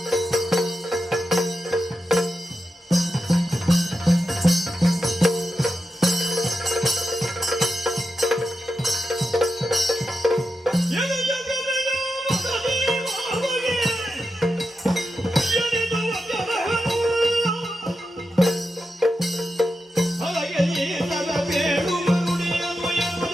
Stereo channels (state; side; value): normal; both; correlation 0.88